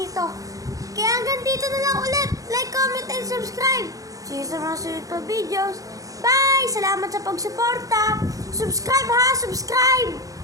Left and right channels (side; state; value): left; late; 0.17 ms